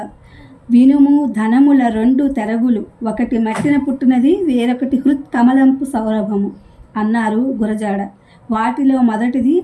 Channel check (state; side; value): identical; both; correlation 1.00